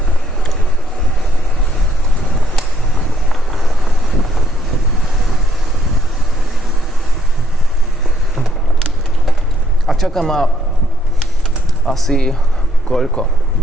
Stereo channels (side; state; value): both; normal; correlation 0.70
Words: čaká ma asi koľko?